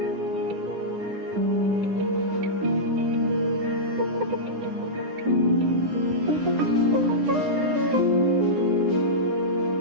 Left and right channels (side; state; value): left; late; 9.9 ms